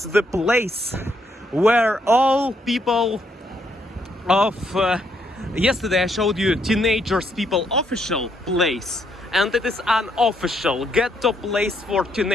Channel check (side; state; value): both; normal; correlation 0.74